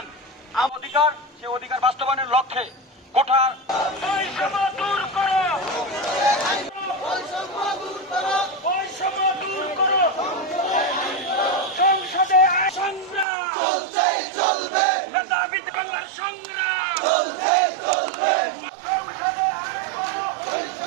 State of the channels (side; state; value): left; drops out; at 13.2 s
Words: অধিকার, সে অধিকার বাস্তবায়নের লক্ষ্যে কোঠা বৈষম্য দূর করো, বৈষম্য দূর করো। সংসদে সংগ্রাম চলবে, নেতা বিদ্যালয়ের সংগ্রাম চলবে। সংসদে আইন করো,